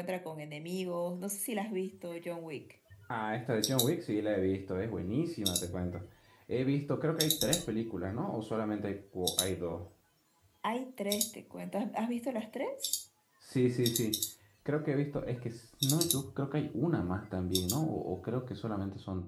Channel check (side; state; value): both; identical; correlation 1.00